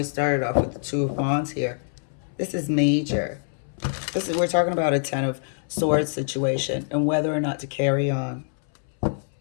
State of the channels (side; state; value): right; silent; 62 dB below the other